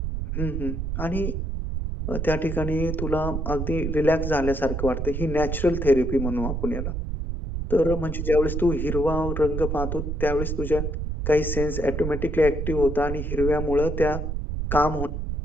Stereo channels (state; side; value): noise; right; rumble, 3 dB below the sound